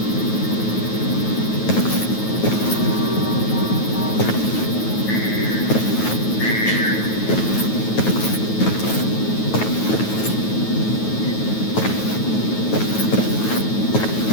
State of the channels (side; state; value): right; late; 9.3 ms